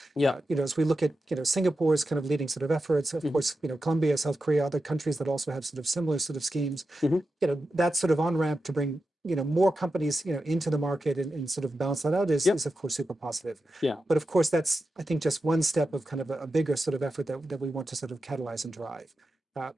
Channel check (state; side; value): normal; both; correlation 0.90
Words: Yeah. As we look at, Singapore's kind of leading sort of efforts, of course, Colombia, South Korea, other countries that also have sort of similar sort of schemes, that sort of on-ramp to bring, more companies, into the market and sort of balance that out is of course super positive. Yeah. But of course, that's, I think, just one step of kind of a bigger sort of effort that we want to sort of catalyze and drive.